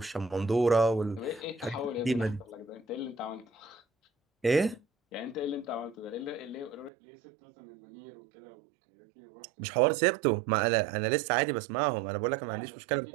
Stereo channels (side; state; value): left; drops out; at 6.9 s